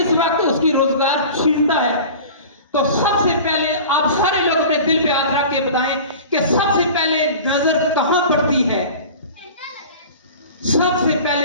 وقت اس کی روزگار چھینتا ہے, تو سب سے پہلے آپ سارے لوگ اپنے دل پہ ہاتھ رکھ کے بتائیں کہ سب سے پہلے نظر کہاں پڑتی ہے؟ سب سے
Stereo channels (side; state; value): both; inverted; correlation -0.38